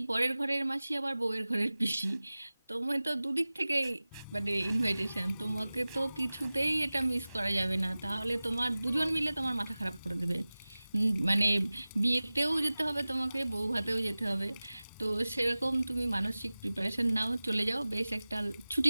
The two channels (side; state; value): both; inverted; correlation -0.98